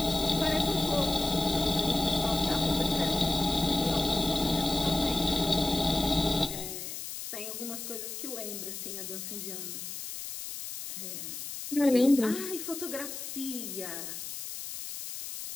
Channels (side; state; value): left; noise; hiss, 8 dB below the sound